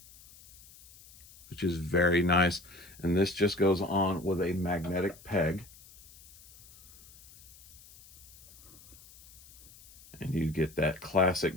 which is very nice. And this just goes on with a magnetic peg. And you get that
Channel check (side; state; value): left; noise; hiss, 22 dB below the sound